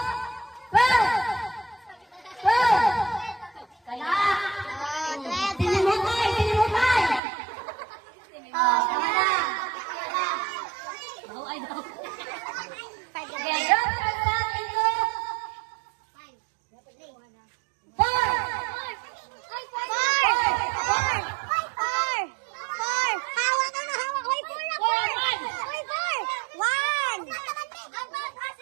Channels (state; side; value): drops out; left; at 7.2 s